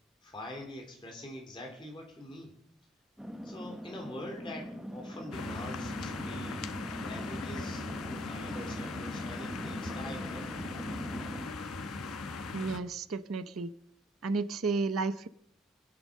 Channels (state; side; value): normal; both; correlation 0.63